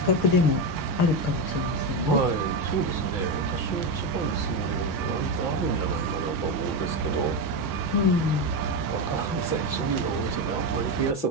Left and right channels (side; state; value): right; late; 5.8 ms